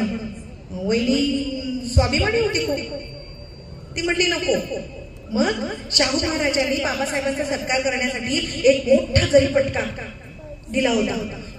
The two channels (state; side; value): identical; both; correlation 1.00